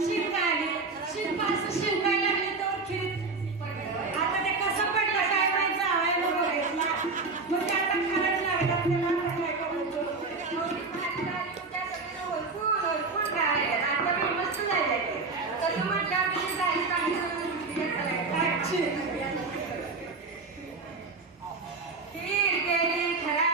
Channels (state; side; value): quieter; left; 4.0 dB